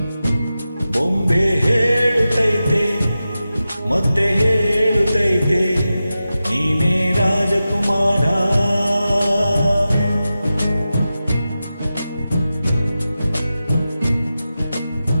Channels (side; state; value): both; inverted; correlation -0.93